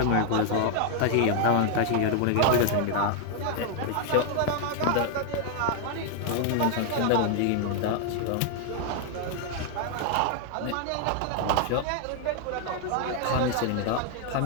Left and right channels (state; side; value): different; both; correlation 0.00